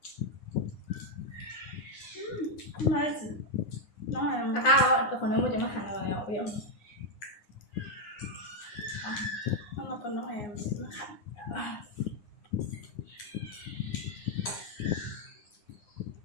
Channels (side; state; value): right; late; 9.7 ms